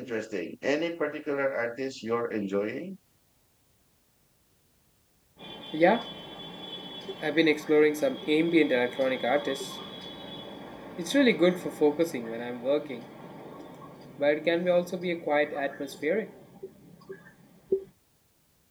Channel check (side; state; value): both; identical; correlation 1.00